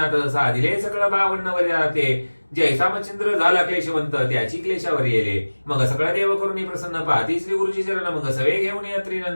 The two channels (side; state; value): both; inverted; correlation -1.00